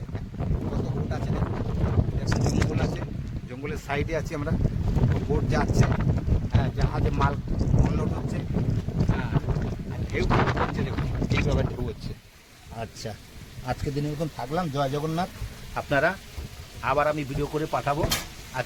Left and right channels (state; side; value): identical; both; correlation 1.00